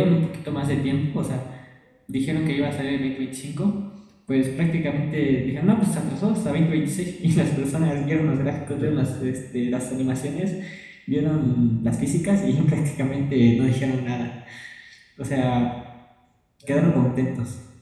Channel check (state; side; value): identical; both; correlation 1.00